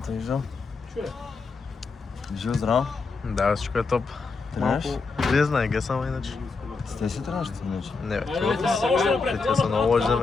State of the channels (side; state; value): right; quieter; 4.4 dB